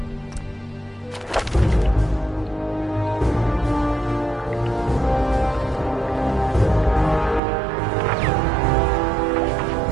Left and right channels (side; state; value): left; drops out; at 7.4 s